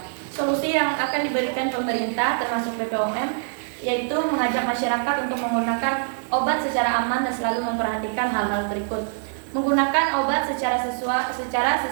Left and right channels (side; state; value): left; silent; 63 dB below the other